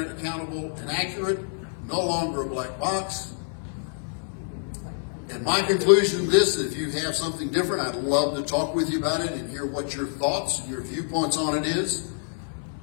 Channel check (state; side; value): silent; right; 60 dB below the other